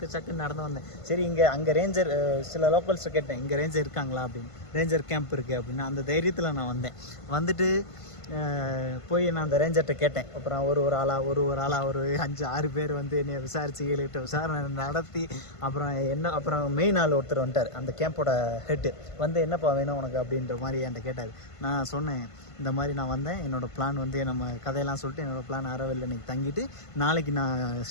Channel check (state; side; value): late; right; 1.5 ms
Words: நடந்து வந்தேன். சரி, அங்கே ரேஞ்சர் சில லோக்கல்ஸை கேட்டேன், இங்கே ரேஞ்சர் இருக்காங்களா அப்படின்னு. ரேஞ்சர் கேம்ப் இருக்குது அப்படின்னு அந்த தைரியத்தில் நான் வந்தேன். வந்துட்டு போய் நான் அந்த ரேஞ்சர்கிட்ட கேட்டேன். அப்புறம் ஒரு ஆளாக ஒரு 5-6 பேர் வந்து என்னை விசாரித்து விசாரணை நடத்தி அப்புறம் மெயின் ஆள் ஒருத்தர் வந்துட்டார், அந்த கேம்போட ஹெட்டு. வந்து என்னப்பா வேணும் உனக்கு அப்படின்ற மாதிரி என்கிட்ட கேட்டார். நான் சொன்னேன், இந்த மாதிரி நான் வந்தேன், என்னோடய பிளான் வந்து நம்ம கதையெல்லாம் சொல்லிட்டு என்னோடய பிளான் ஆரோவில் இன்னைக்கு தங்கிட்டு நாளைக்கு நான்